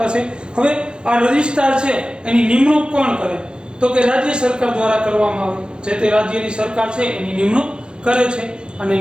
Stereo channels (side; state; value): left; late; 0.050 ms